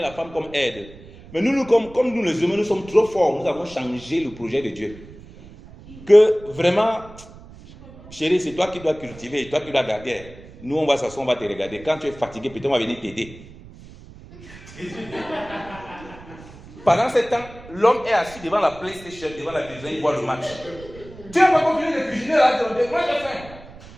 la femme comme aide. Mais nous, comme nous les humains, nous sommes trop forts. Nous avons changé le projet de Dieu. Que vraiment, chérie, c'est toi qui dois cultiver et toi qui dois garder. Nous, on va s'asseoir, on va te regarder. Quand tu es fatigué, peut-être on va venir t'aider. Pendant ce temps, l'homme est assis devant la PlayStation, devant la télévision, il voit le match. Tu n'as pas continué de cuisiner là, moi j'ai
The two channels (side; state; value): right; noise; rumble, 19 dB below the sound